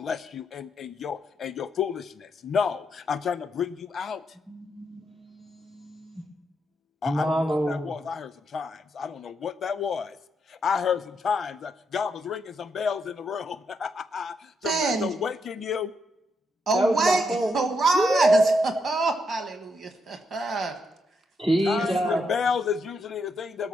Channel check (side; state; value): both; normal; correlation 0.79